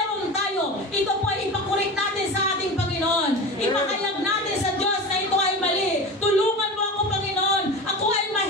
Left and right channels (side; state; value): both; normal; correlation 0.29